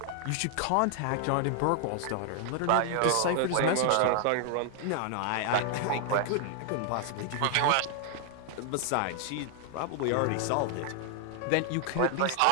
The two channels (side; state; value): both; different; correlation 0.00